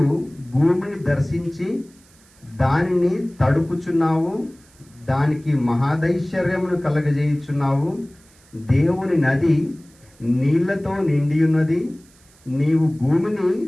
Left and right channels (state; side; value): noise; right; hiss, 29 dB below the sound